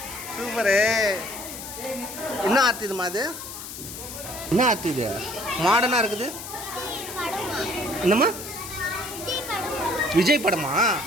super. என்ன ஆர்ட் இதுமா அது? என்ன ஆர்ட் இது? மாடர்னாக இருக்குது. என்னம்மா? விஜய் படமா?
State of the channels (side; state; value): left; noise; hiss, 10 dB below the sound